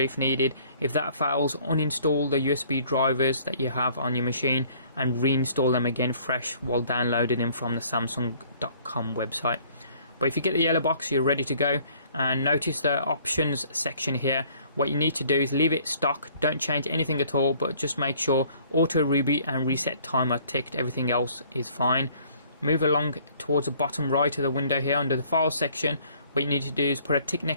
needed. If that fails, uninstall the USB drivers that you have on your machine and reinstall them again fresh while downloading them from the Samsung.com website. But if you get the yellow box, you're ready to go. And notice the options section here. What you need to do is leave it stock, don't change anything at all, but just make sure auto reboot and reset time are ticked. Everything else is fine. Move along towards the bottom right of the window here under the file section. What you need to do is put a tick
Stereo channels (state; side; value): inverted; both; correlation -0.57